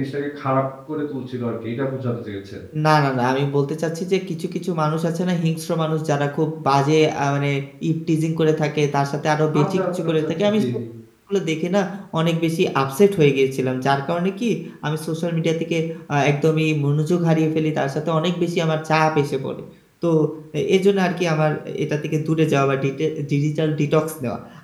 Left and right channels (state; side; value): identical; both; correlation 1.00